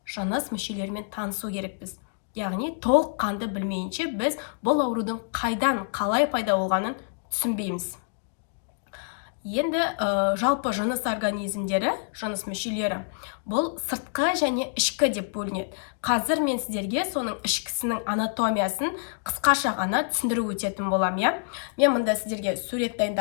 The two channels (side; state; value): right; silent; digital silence